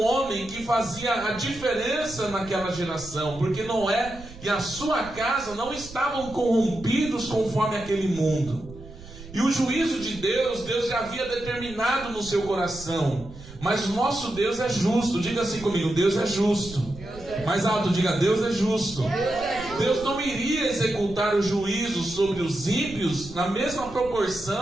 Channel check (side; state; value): right; noise; rumble, 17 dB below the sound